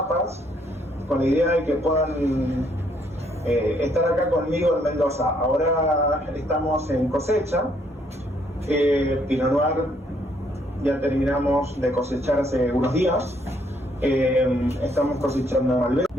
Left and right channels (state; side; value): normal; both; correlation 0.69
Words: con la idea de que puedan estar acá conmigo en Mendoza. Ahora estamos en cosecha. Pinot Noir ya terminamos de cosechar hace unos días. Estamos cosechando Malbec.